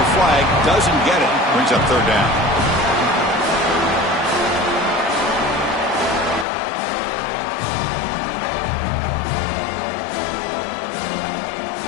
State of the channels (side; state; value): right; drops out; at 6.5 s